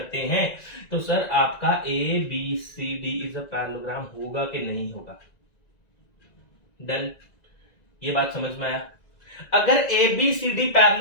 हैं तो सर आपका A B C D is a parallelogram होगा कि नहीं होगा। डन, ये बात समझ में आया। अगर A B C D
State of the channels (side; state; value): right; late; 1.9 ms